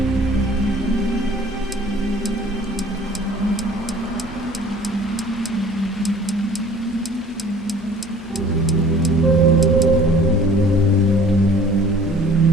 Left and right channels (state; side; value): normal; both; correlation 0.50